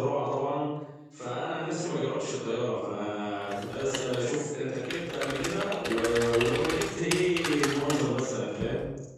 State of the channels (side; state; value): both; identical; correlation 1.00